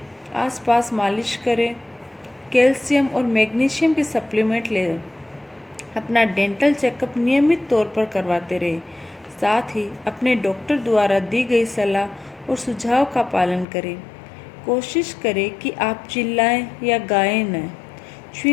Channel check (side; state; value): right; drops out; at 13.7 s